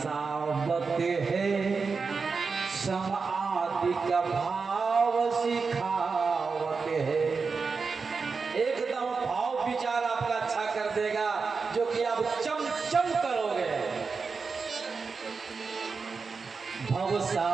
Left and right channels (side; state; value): left; quieter; 4.8 dB